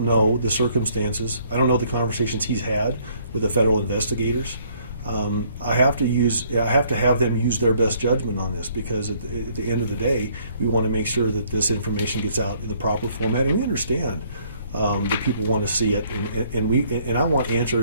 know the circumstances. I don't know the conversations he's had with the federal investigators. I have to have them use their best judgment on this, because at the end of the day, we want to make sure that this information gets out in the proper format, and we understand that people want to see it, and I want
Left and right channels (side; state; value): both; inverted; correlation -0.64